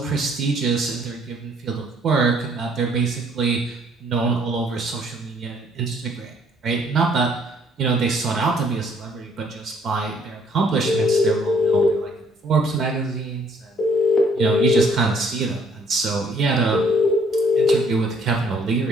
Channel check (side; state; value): both; normal; correlation 0.63